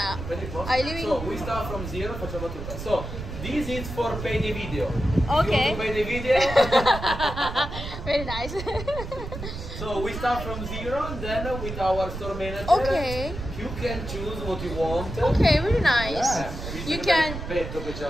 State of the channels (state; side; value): noise; right; rumble, 8 dB below the sound